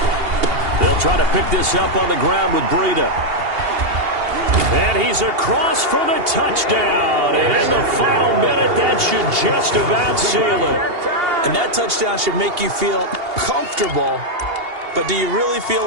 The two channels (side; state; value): left; late; 2.8 ms